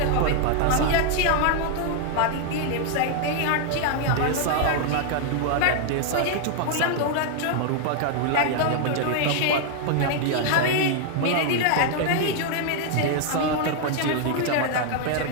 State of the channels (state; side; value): different; both; correlation 0.00